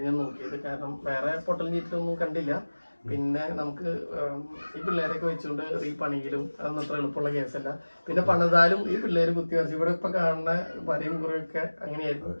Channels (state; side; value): inverted; both; correlation -1.00